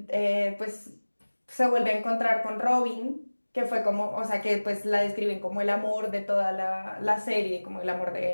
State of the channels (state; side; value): inverted; both; correlation -1.00